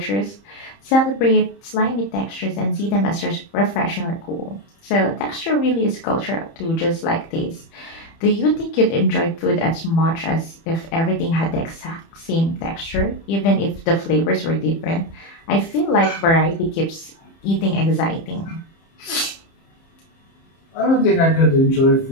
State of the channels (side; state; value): right; late; 30 ms